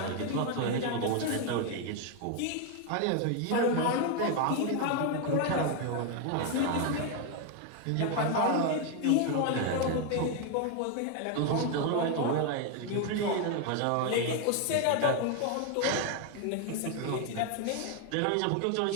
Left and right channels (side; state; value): both; different; correlation 0.01